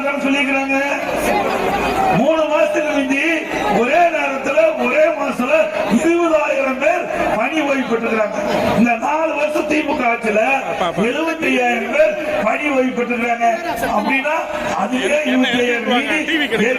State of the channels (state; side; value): identical; both; correlation 1.00